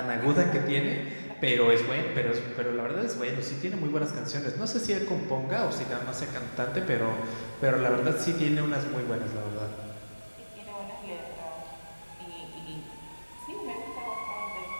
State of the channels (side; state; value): both; inverted; correlation -1.00